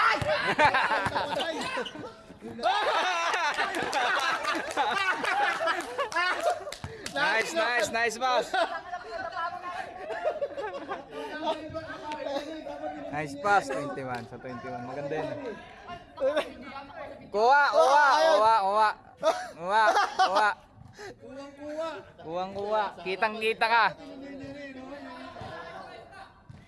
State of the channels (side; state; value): both; identical; correlation 1.00